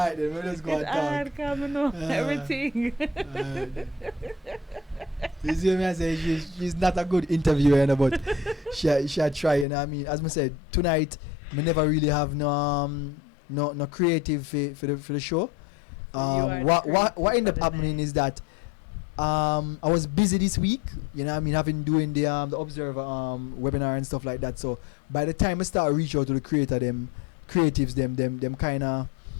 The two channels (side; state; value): right; drops out; at 9.7 s